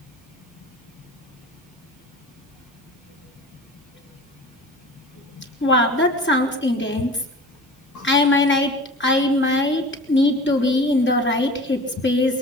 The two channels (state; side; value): normal; both; correlation 0.38